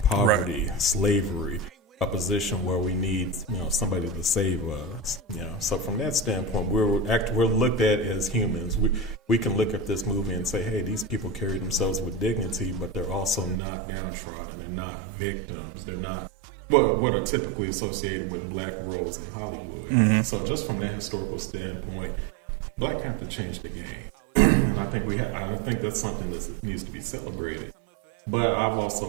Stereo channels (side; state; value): left; drops out; at 13.6 s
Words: poverty, slavery, a position where we need somebody to save us. So from that standpoint, we're looked at as humans. We can look at this movie and say, hey, these people carry themselves with dignity, but they're also not downtrodden. They're not victims. They're not what are typically associated with black roles in Hollywood. Mm-hmm. So just from that historical standpoint, Black Panther changed the game. And I think that's something that needs to be celebrated. But I've